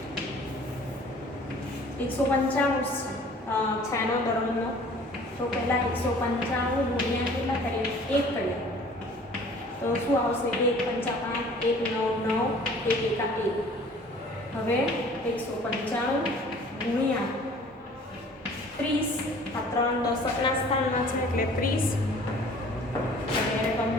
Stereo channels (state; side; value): normal; both; correlation 0.50